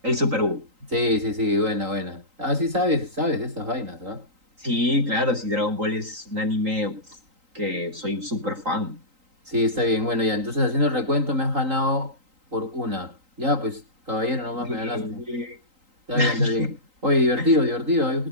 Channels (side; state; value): left; late; 3.9 ms